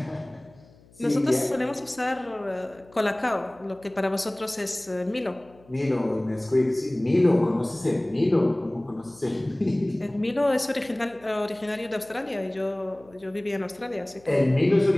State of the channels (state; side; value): noise; left; hum, 27 dB below the sound